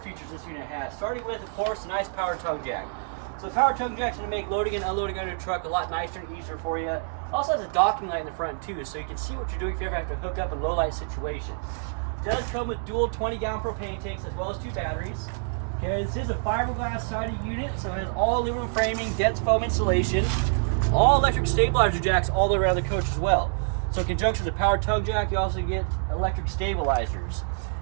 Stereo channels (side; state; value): left; silent; 60 dB below the other